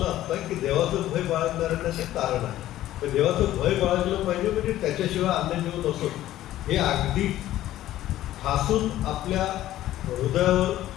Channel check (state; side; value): quieter; right; 13.9 dB